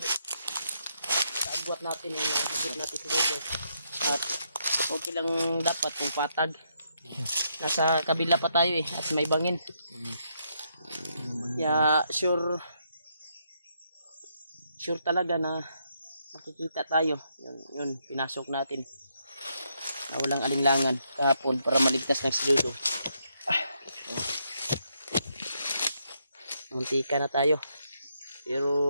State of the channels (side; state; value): both; inverted; correlation -0.77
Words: agwat natin yung agwat natin sa dulo. At okay lang dapat kung patag. Nasa kabila pa tayo eh at may bangin. Ya sure talaga na makikita tayo. Yun pinasok natin. Na walang alinlangan kahapon para maligtas ng si Dudong. Muntika na tayo.